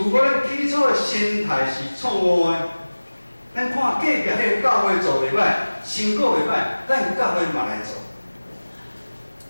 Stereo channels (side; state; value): both; inverted; correlation -1.00